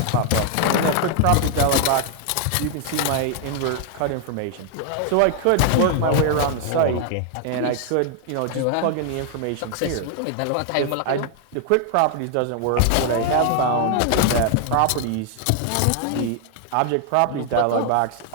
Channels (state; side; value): different; both; correlation 0.00